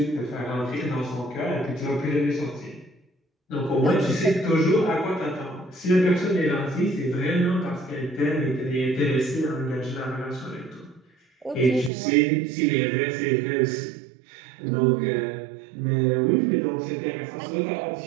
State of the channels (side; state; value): left; drops out; at 11.9 s